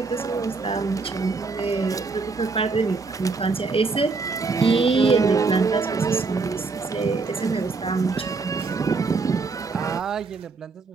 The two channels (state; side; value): quieter; left; 4.2 dB